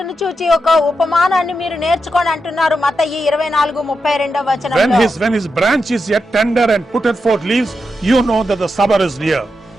చూచి ఒక ఉపమానాన్ని మీరు నేర్చుకొని అంటున్నారు మత్తయి 24:32 వచనంలో. When his branch is yet tender and putteth forth leaves, you know that the summer is near.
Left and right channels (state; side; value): normal; both; correlation 0.87